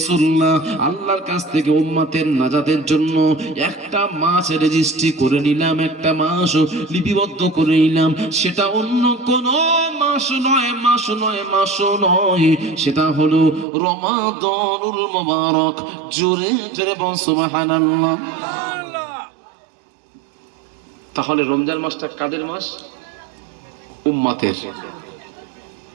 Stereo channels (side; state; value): left; drops out; at 13.7 s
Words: আল্লাহর কাছ থেকে উম্মতের নাজাতের জন্য একটা মাস রেজিস্ট্রি করে নিলাম, একটা মাস লিপিবদ্ধ করে নিলাম। সেটা অন্য কোন মাস নয়, সেটা হলো রমাদানুল মুবারক। জোরে জোরে বল সুবহানাল্লাহ। তাহলে রমজান মাসটা কাদের মাস? উম্মতের